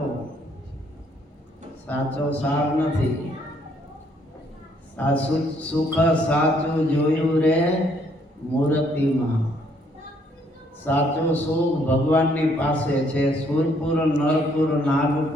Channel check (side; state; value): both; normal; correlation 0.68